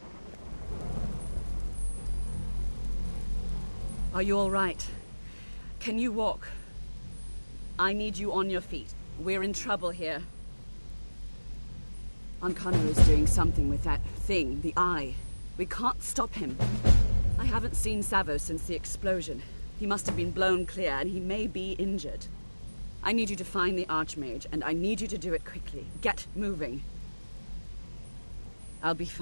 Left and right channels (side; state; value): both; inverted; correlation -1.00